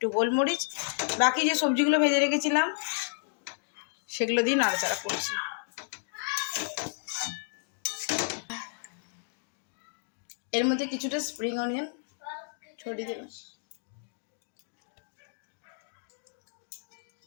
গোলমরিচ। বাকি যে সবজিগুলো ভেজে রেখেছিলাম সেগুলো দিয়ে নাড়াচাড়া করছি। এর মধ্যে কিছুটা স্প্রিং অনিয়ন ছড়িয়ে দেবেন।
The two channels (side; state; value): right; silent; digital silence